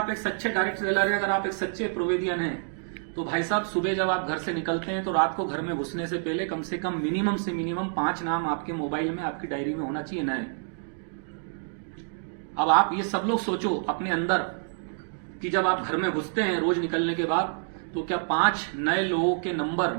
एक सच्चे डायरेक्ट सेलर हैं, अगर आप एक सच्चे प्रोवेदियन हैं, तो भाई साहब सुबह जब आप घर से निकलते हैं तो रात को घर में घुसने से पहले कम से कम मिनिमम से मिनिमम 5 नाम आपके मोबाइल में, आपकी डायरी में होना चाहिए नए। अब आप ये सब लोग सोचो अपने अंदर कि जब आप घर में घुसते हैं रोज निकलने के बाद, तो क्या 5 नए लोगों के नंबर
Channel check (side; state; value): left; silent; digital silence